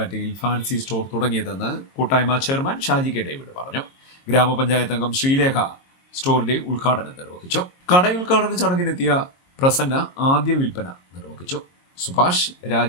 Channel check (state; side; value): late; right; 22 ms